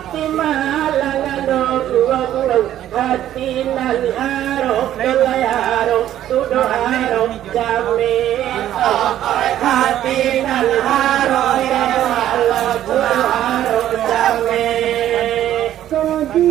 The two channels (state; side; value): quieter; left; 12.0 dB